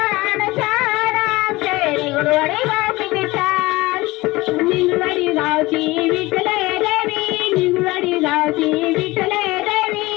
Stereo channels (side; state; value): right; quieter; 20.6 dB